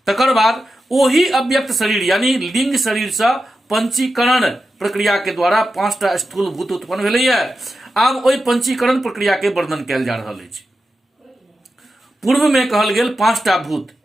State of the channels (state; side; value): normal; both; correlation 0.90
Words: तकर बाद ओही अव्यक्त शरीर यानी लिंग शरीर से पंचीकरण प्रक्रिया के द्वारा 5टा स्थूल भूत उत्पन्न भेलैया। आब ओहि पंचीकरण प्रक्रिया के वर्णन कयल जा रहल अछि। पूर्व में कहल गेल 5टा भूत